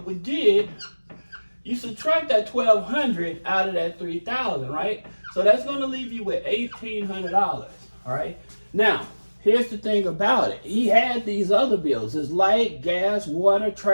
we did, you subtract that $1,200 out of that $3,000, right? So that's going to leave you with $1,800. All right. Now, here's the thing about it. He had these other bills: his light, gas, water,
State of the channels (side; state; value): both; inverted; correlation -1.00